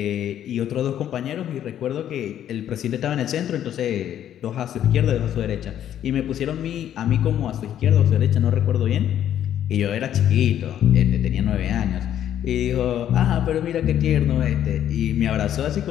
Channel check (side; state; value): right; quieter; 10.7 dB